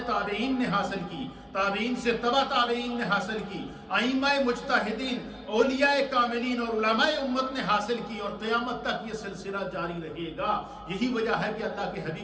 تابعین نے حاصل کی، تابعین سے تبع تابعین نے حاصل کی، ائمہ مجتہدین، اولیاء کاملین اور علماء امت نے حاصل کی، اور قیامت تک یہ سلسلہ جاری رہے گا. یہی وجہ ہے کہ اللہ کے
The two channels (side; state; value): both; identical; correlation 1.00